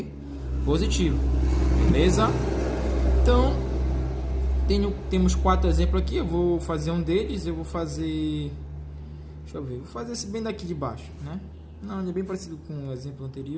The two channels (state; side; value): identical; both; correlation 1.00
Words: Positivo. Beleza? Então, temos 4 exemplos aqui. Eu vou fazer um deles. Eu vou fazer... Deixa eu ver. Vou fazer esse bem daqui de baixo, né? Não, ele é bem parecido com o exemplo